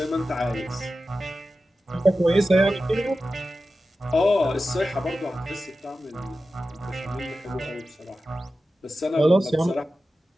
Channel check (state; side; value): normal; both; correlation 0.93